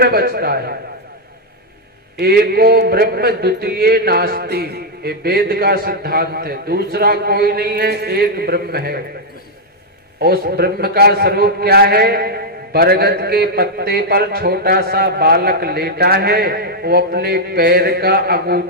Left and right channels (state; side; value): normal; both; correlation -0.03